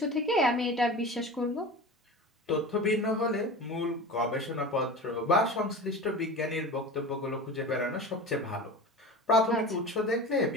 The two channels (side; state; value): both; normal; correlation 0.32